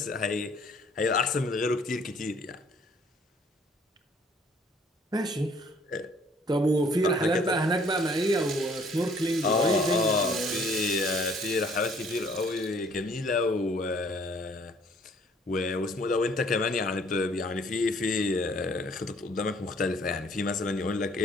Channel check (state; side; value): normal; both; correlation 0.59